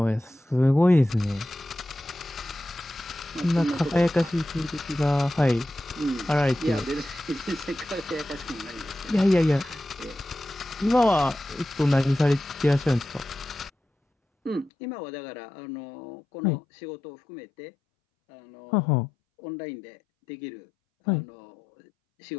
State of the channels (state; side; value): drops out; right; at 14.7 s